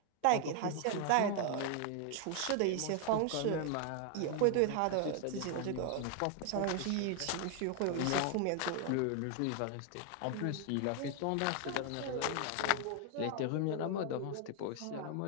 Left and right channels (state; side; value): different; both; correlation 0.00